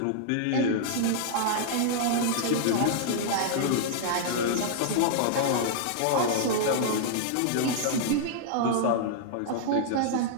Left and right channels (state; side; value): different; both; correlation -0.01